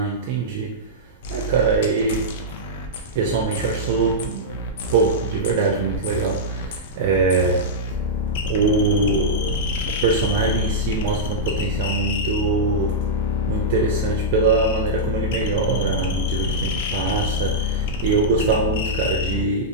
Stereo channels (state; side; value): normal; both; correlation -0.09